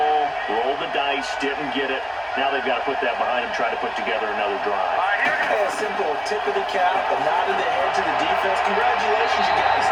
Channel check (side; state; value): both; identical; correlation 1.00